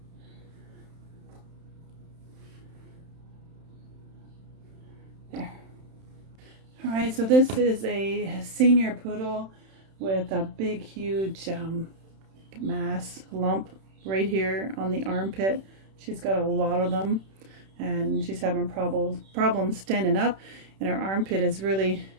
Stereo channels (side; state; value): left; late; 31 ms